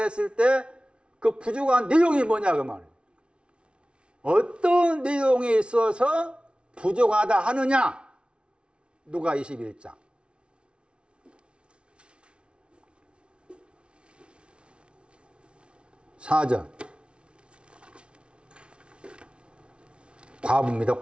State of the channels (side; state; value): left; late; 0.058 ms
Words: 때 그 부족한 내용이 뭐냐 그 말이에요. 어떤 내용에 있어서 부족하다 하느냐? 누가 21장. 사절. 과부입니다.